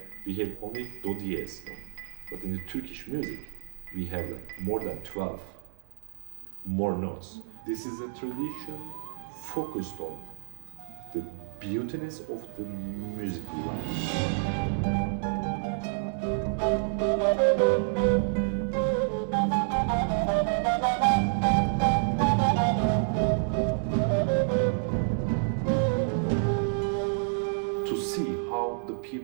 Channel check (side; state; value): left; silent; digital silence